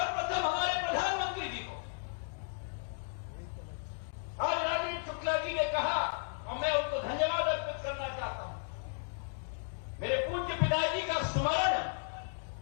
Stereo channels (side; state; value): right; silent; digital silence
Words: हमारे प्रधानमंत्री जी को। आज राजेंद्र शुक्ला जी ने कहा और मैं उनको धन्यवाद अर्पित करना चाहता हूं। मेरे पूज्य पिताजी का स्मरण